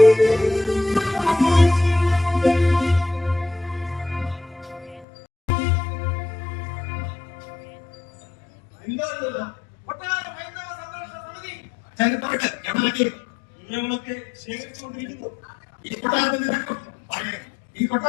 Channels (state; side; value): drops out; right; at 5.1 s